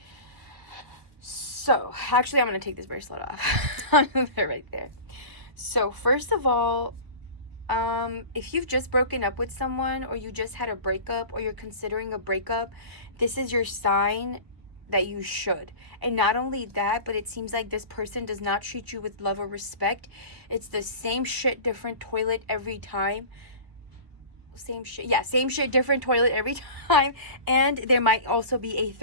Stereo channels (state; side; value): late; left; 1.3 ms